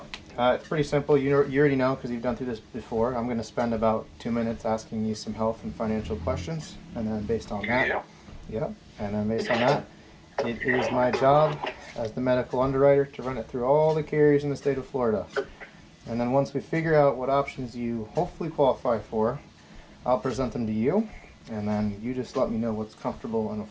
it's pretty simple. You already know because you've done through this before. I'm going to spend about 2 minutes asking you some health and financial questions, and then based on that, and then based on that, it is my job as the medical underwriter to run it through all the carriers in the state of Florida. And then once we figure out what options you hopefully qualify for, I'll present them to you, and then you just let me know what's comfortable and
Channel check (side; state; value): both; identical; correlation 1.00